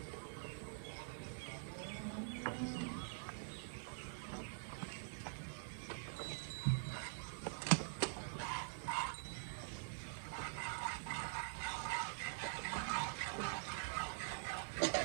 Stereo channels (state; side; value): silent; left; digital silence